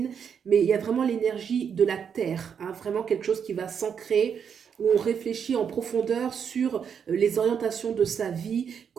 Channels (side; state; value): left; quieter; 7.3 dB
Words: mais il y a vraiment l'énergie de la terre, hein, vraiment quelque chose qui va s'ancrer, où on réfléchit en profondeur sur les orientations de sa vie,